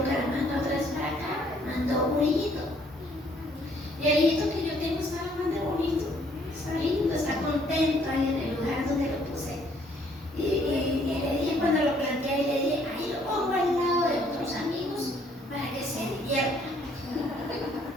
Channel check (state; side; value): normal; both; correlation 0.64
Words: otra vez para acá, mandó un hijito. Y el hijito que yo tengo está más de bonito, está lindo, está contento ahí en el lugar donde lo puse. Y le dije, cuando lo planteé ahí, le dije, ahí lo pongo al lado de otros amigos para que se diviertan.